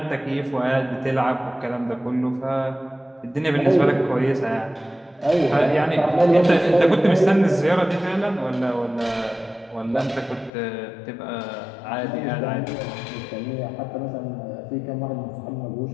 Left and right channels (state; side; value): drops out; right; at 10.5 s